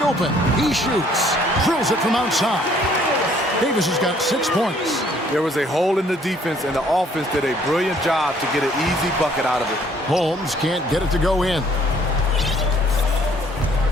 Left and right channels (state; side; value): normal; both; correlation 0.61